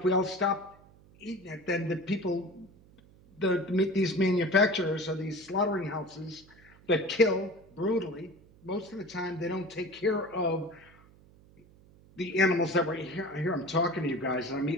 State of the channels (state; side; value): noise; right; hum, 26 dB below the sound